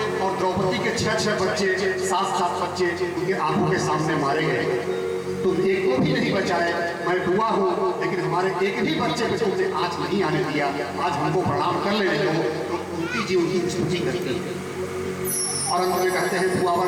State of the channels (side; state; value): both; identical; correlation 1.00